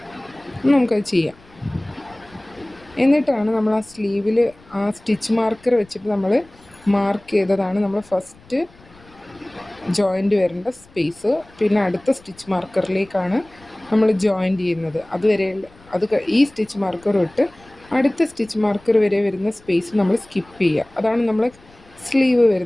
നമുക്കത് ചെയ്യാം. എന്നിട്ടാണ് നമ്മൾ ആ സ്ലീവിൽ ആ സ്റ്റിച്ച് മാർക്കർ വെച്ചിട്ട് നമ്മൾ മാർക്ക് ചെയ്തതാണ് നമ്മൾ ഫസ്റ്റ് ജോയിൻ്റ് വരേണ്ട സ്പേസ്. പിന്നെ അടുത്ത സ്റ്റിച്ച് മാർക്കറിലേക്കാണ് നമ്മൾ ജോയിൻ്റ് ചെയ്യുന്നത്. അതുവരെ ഈ സ്റ്റിച്ച് മാർക്കർ വിട്ട് അടുത്ത സ്റ്റിച്ച് മാർക്കർ വരെ വരുന്ന സ്പേസ് നമ്മൾ സ്കിപ്പ് ചെയ്യുക. അതാണ് നമ്മൾ സ്ലീവ്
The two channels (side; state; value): left; noise; rumble, 27 dB below the sound